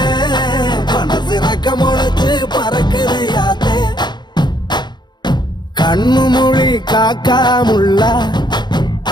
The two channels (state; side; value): late; right; 0.21 ms